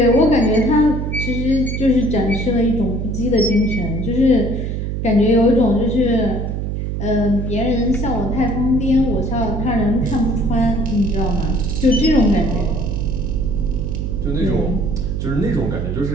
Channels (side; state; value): right; noise; hum, 3 dB below the sound